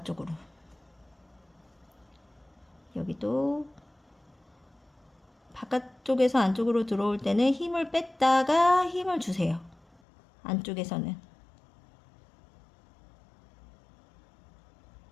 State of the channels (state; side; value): drops out; right; at 10.0 s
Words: 여기도 바깥쪽에서 안쪽으로 들어올 때는 힘을 뺐다가 힘을 주세요. 안쪽에서는.